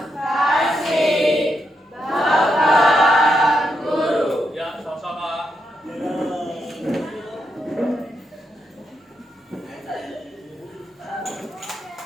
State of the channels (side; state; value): both; normal; correlation 0.82